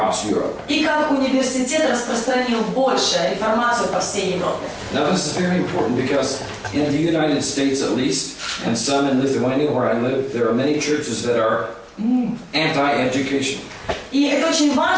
Europe. И как университет распространил больше реформацию по всей Европе. Now this is very important because in the United States at least, and some in Lithuania where I live, there are many churches that are anti-education. И это очень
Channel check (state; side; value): identical; both; correlation 1.00